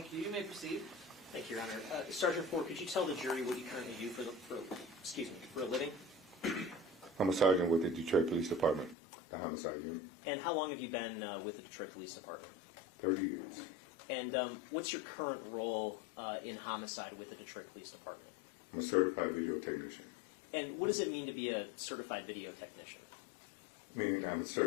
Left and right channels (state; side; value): drops out; right; at 9.0 s